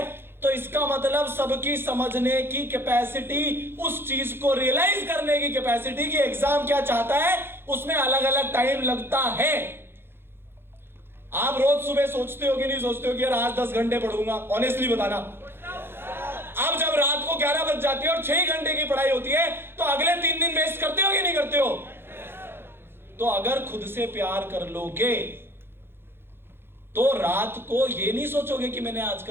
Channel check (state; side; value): late; left; 0.11 ms